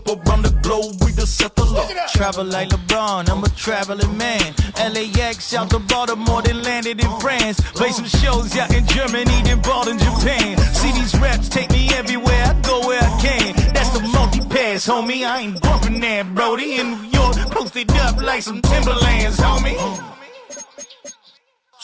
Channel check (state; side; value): identical; both; correlation 1.00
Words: around the globe, we the settler. Travel like LeBron, I'm a traveling man. LAX out to Baltimore, then landed in France. Play some shows out in Germany, then bought in Japan. See these raps take me everywhere, I go where I can. That's the multi-pass, homie, I ain't bumping that, Brody. In New York, posted up like some Timberlands, homie.